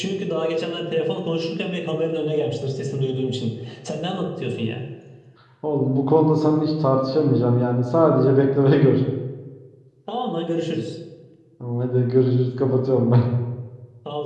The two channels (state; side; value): identical; both; correlation 1.00